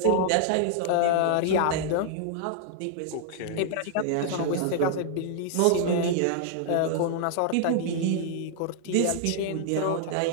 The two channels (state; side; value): different; both; correlation -0.01